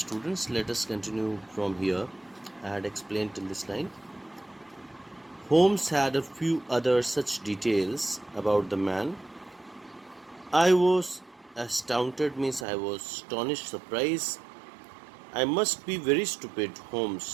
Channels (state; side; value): drops out; left; at 12.7 s